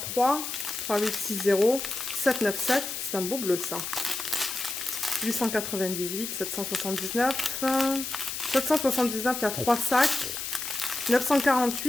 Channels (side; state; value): left; noise; hiss, 5 dB below the sound